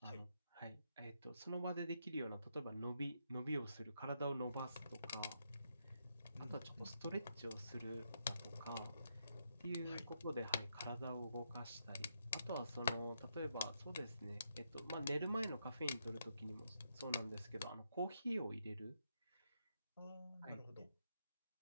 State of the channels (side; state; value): both; inverted; correlation -0.79